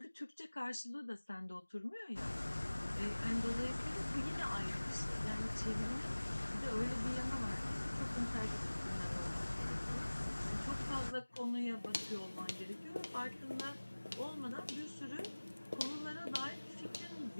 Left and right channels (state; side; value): inverted; both; correlation -1.00